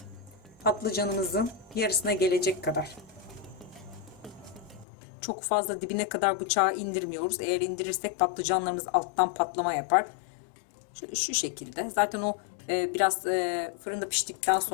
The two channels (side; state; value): right; drops out; at 4.9 s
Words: patlıcanımızın yarısına gelecek kadar, çok fazla dibine kadar bıçağı indirmiyoruz. Eğer indirirsek patlıcanlarımız alttan patlama yapar. Şöyle şu şekilde. Zaten o biraz fırında piştikten